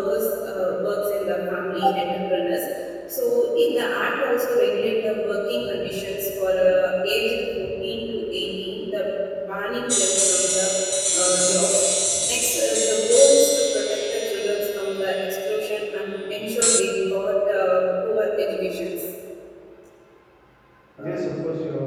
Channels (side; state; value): both; identical; correlation 1.00